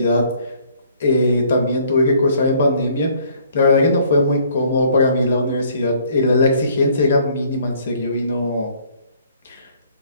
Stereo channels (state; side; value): inverted; both; correlation -0.61